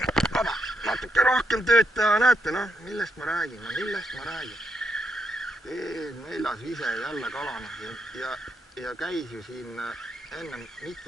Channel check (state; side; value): normal; both; correlation 0.79